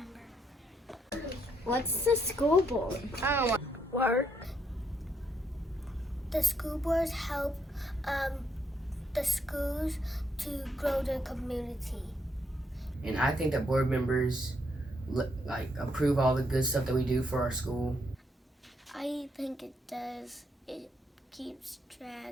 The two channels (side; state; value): both; normal; correlation 0.75